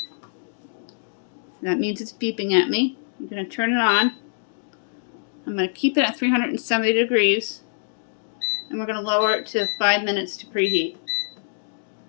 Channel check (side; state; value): right; silent; digital silence